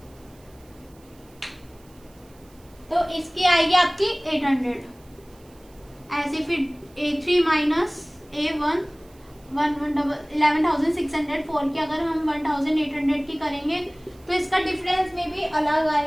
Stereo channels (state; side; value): noise; right; hiss, 29 dB below the sound